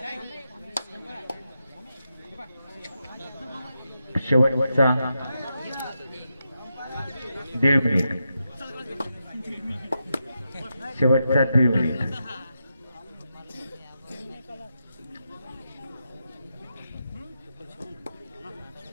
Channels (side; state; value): both; inverted; correlation -0.87